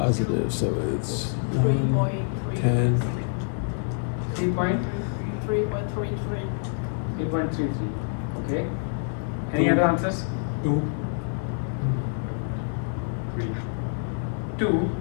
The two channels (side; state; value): right; silent; digital silence